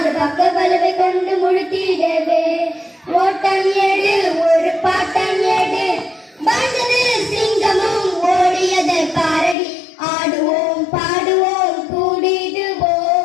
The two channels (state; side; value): drops out; right; at 9.6 s